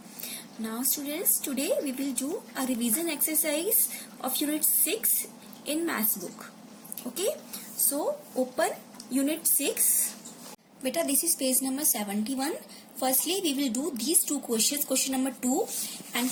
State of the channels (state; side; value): identical; both; correlation 1.00